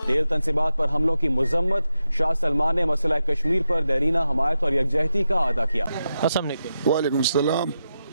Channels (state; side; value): inverted; both; correlation -0.88